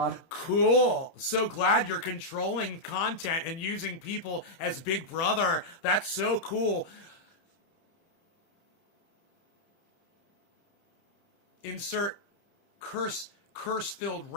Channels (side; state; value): right; late; 30 ms